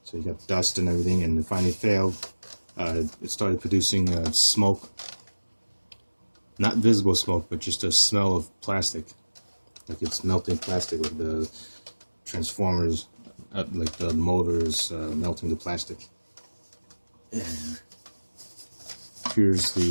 so you got dust and everything, and it finally failed. It started producing smoke, not visible smoke, but just a smell of plastic, like it's melting plastic, with the transformers, like the motors melting the plastic. And here's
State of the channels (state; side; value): inverted; both; correlation -1.00